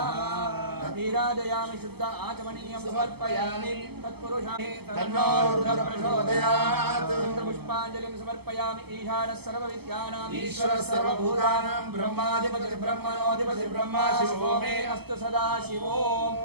नीराजयामि शुद्ध आचमनीयं समर्पयामि तत्पुरुषाय तन्नो रुद्रः प्रचोदयात् पुष्पाञ्जलिं समर्पयामि ईशानः सर्वविद्यानाम् ईश्वरः सर्वभूतानां ब्रह्माधिपतिः ब्रह्मणोऽधिपतिः ब्रह्मा शिवो मे अस्तु सदा शिवो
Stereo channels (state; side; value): late; left; 0.96 ms